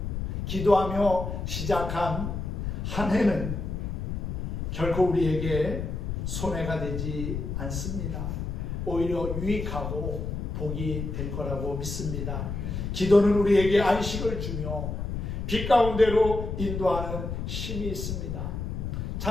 기도하며 시작한 한 해는 결코 우리에게 손해가 되지 않습니다. 오히려 유익하고 복이 될 거라고 믿습니다. 기도는 우리에게 안식을 주며 빛 가운데로 인도하는 힘이 있습니다.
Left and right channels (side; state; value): left; noise; rumble, 4 dB below the sound